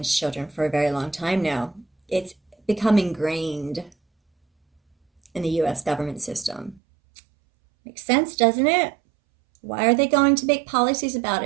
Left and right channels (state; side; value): drops out; left; at 6.8 s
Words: children for a very long time now. It's become ingrained in the U.S. government system. Makes sense, doesn't it? Why are they going to make policies about